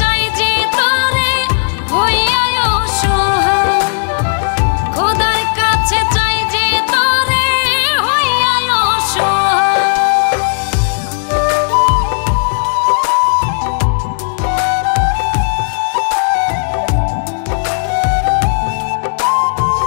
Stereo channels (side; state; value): right; silent; digital silence